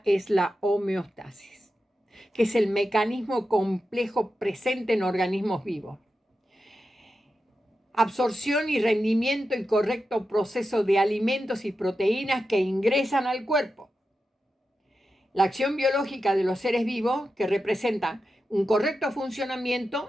es la homeostasis, que es el mecanismo complejo presente en organismos vivos. Absorción y rendimiento y correcto proceso de alimentos y proteínas que ingresan al cuerpo. La acción biológica de los seres vivos que representa un correcto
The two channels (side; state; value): both; normal; correlation 0.90